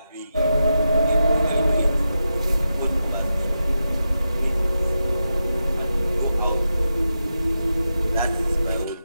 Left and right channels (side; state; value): both; inverted; correlation -0.88